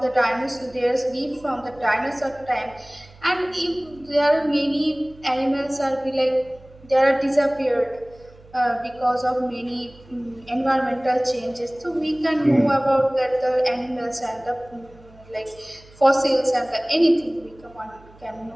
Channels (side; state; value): right; noise; hum, 24 dB below the sound